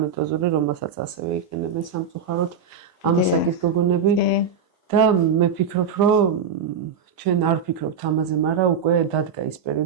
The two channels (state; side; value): quieter; left; 6.0 dB